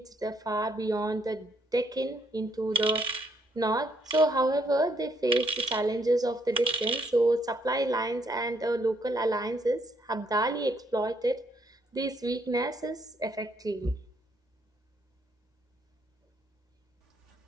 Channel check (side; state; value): both; normal; correlation 0.71